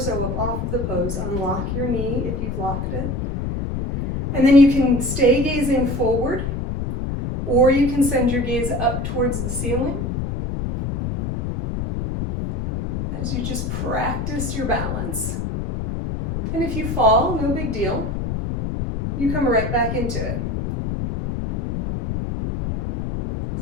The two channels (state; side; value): noise; left; rumble, 3 dB below the sound